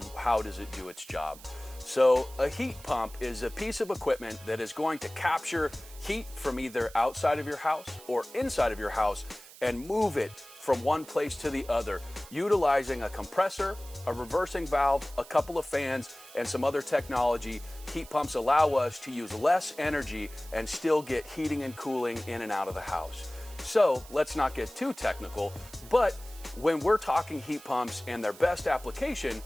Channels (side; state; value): right; noise; hiss, 19 dB below the sound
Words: how does it do its job. So a heat pump is a piece of equipment that is going to capture heat from either outside of your house or inside of your house and move it from one place to the other, utilizing a compressor, a reversing valve, a couple of fans, and some other technology. Heat pumps allow us to use less energy and still get heating and cooling in and out of the house. So let's not get too technical, but when we're talking heat pumps and their best application,